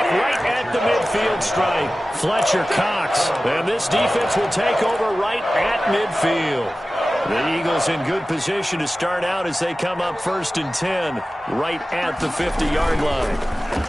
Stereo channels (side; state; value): both; normal; correlation 0.96